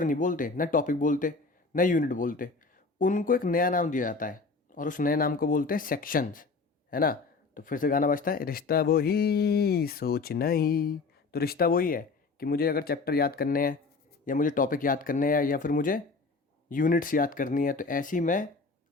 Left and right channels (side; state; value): right; quieter; 4.1 dB